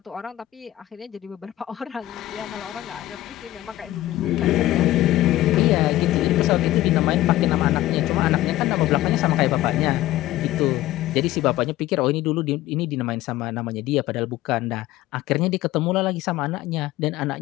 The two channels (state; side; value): quieter; right; 15.4 dB